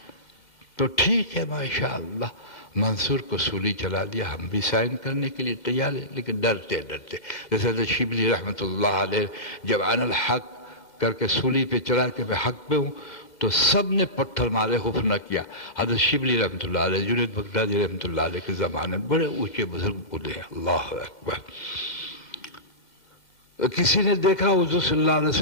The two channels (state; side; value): late; right; 1.9 ms